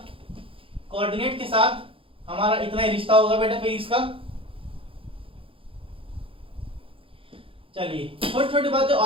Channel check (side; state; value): left; late; 0.26 ms